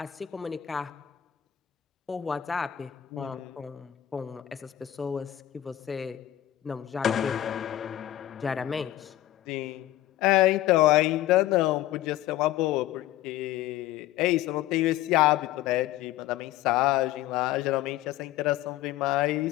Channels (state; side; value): quieter; right; 13.6 dB